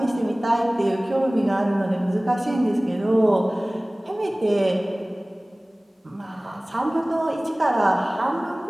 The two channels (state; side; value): normal; both; correlation 0.98